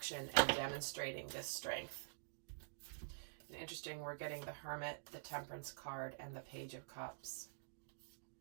and demonstrating this strength. And interesting, we're getting the Hermit, the Temperance card, and the Page of Cups.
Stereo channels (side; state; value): left; silent; digital silence